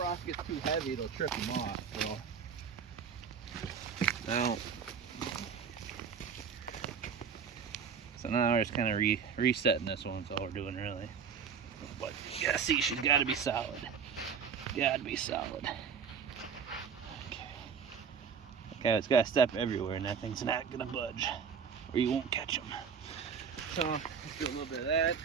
gets too heavy, it'll trip them off. So now we're just kind of resetting this one. That's all we're doing really. But yeah, see, she's got to be solid. Got to be solid. Okay, it's got to step everywhere, and that thing's not gonna budge, or you won't catch them. So let's do a little bit of that.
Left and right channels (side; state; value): left; quieter; 6.6 dB